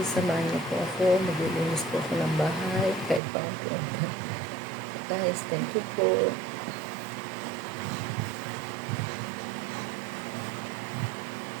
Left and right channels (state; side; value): drops out; left; at 3.2 s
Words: samahan niyo po ako, maglilinis po ako ng bahay, kahit pa unti-unti. Guys, thank you po.